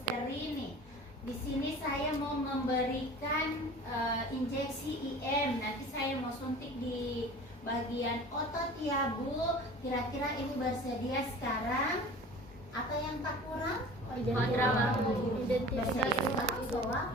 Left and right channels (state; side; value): normal; both; correlation 0.41